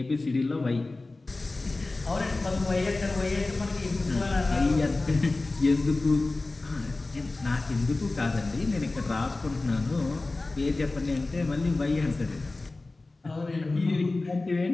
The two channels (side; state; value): right; quieter; 3.2 dB